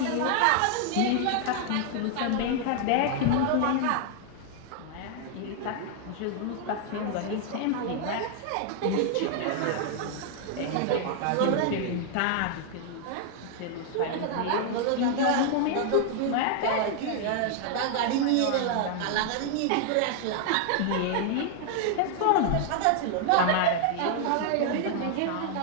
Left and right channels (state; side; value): different; both; correlation 0.00